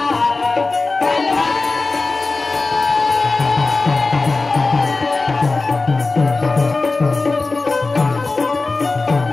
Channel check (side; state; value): right; quieter; 3.6 dB